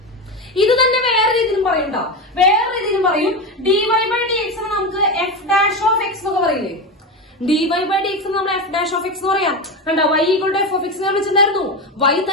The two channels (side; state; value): both; normal; correlation 0.18